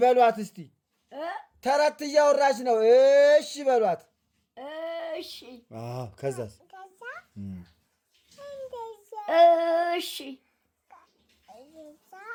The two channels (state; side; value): identical; both; correlation 1.00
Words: በሏት እስቲ። ተረት እያወራች ነው። እሺ በሏት። እሺ ከዛስ እሺ